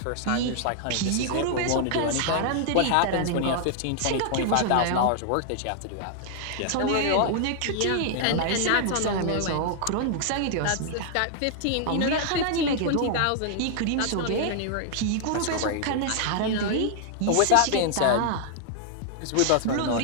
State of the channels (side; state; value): both; different; correlation -0.01